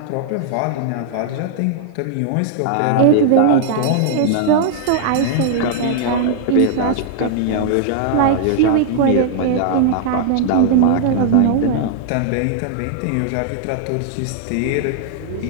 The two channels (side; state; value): both; different; correlation -0.01